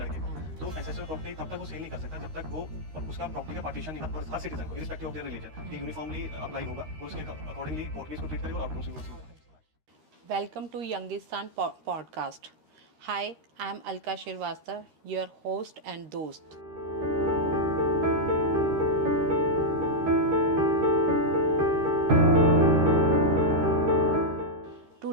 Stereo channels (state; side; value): late; left; 13 ms